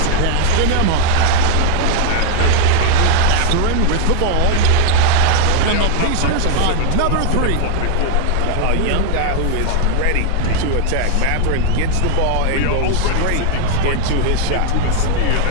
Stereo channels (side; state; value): both; different; correlation 0.00